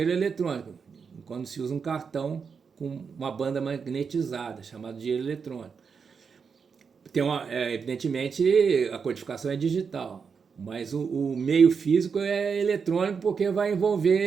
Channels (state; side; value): quieter; left; 5.9 dB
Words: eletrônico, quando se usa um cartão com uma banda magnetizada, chamado dinheiro eletrônico. Evidentemente, a codificação é digital, mas o meio físico é eletrônico porque vai